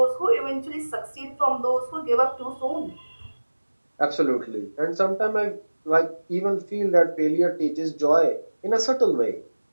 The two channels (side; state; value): both; inverted; correlation -1.00